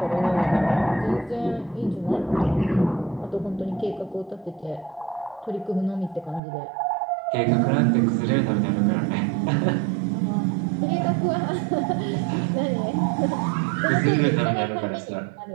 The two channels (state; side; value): drops out; left; at 6.4 s